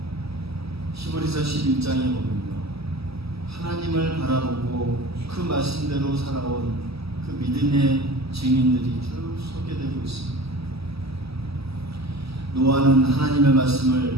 히브리서 11장에 보면요, 하나님을 바라보고 그 말씀대로 살아온 그 믿음의 증인들이 쭉 소개되고 있습니다. 노아는 하나님의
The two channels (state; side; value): late; left; 0.78 ms